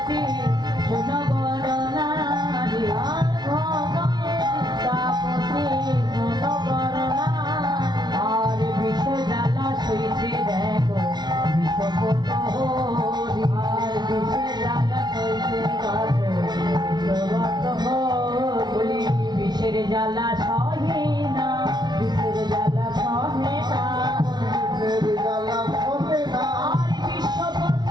সুনগর নারী, আর ভনয় বিদ্যাপতি সুনগর নারী। আর বিষ জ্বালা সইছে দেখো বিষপত হরি, আর বিষ জ্বালা সইছে দেখো বিষপত হরি। বিষের জ্বালা সহে না, বিষের জ্বালা সহে না, আর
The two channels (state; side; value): late; left; 0.20 ms